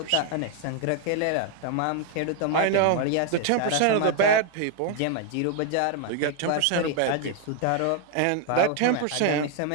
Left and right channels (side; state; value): both; different; correlation 0.00